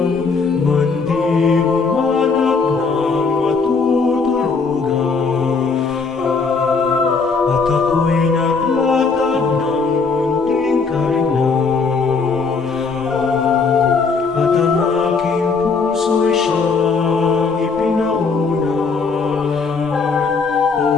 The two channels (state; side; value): quieter; right; 4.7 dB